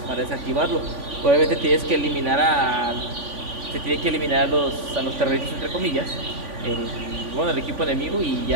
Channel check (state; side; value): late; left; 3.5 ms